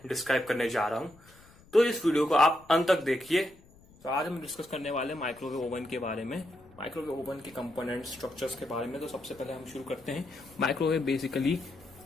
डिस्क्राइब करने जा रहा हूं। तो इस वीडियो को आप अंत तक देखिए। तो आज हम डिस्कस करने वाले माइक्रोवेव ओवन के बारे में, माइक्रोवेव ओवन के कंपोनेंट स्ट्रक्चर्स के बारे में। तो सबसे पहले हम शुरू करते हैं। माइक्रोवेव बेसिकली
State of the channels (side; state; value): left; noise; rumble, 26 dB below the sound